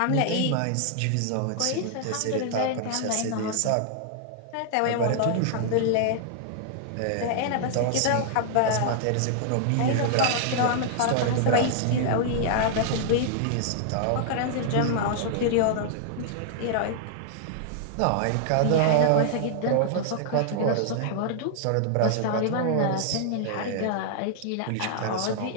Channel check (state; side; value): different; both; correlation -0.01